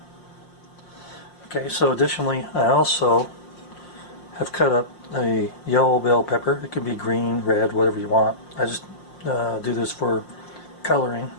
Okay, so additionally I also have cut up a yellow bell pepper. It can be green, red, whatever you want. I just do this for coloring.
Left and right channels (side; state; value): right; late; 5.6 ms